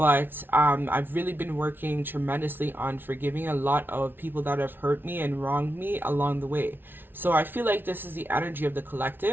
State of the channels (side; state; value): left; late; 0.10 ms